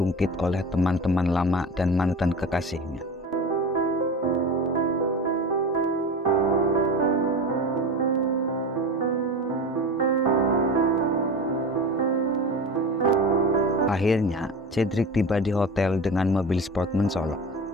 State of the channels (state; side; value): normal; both; correlation 0.30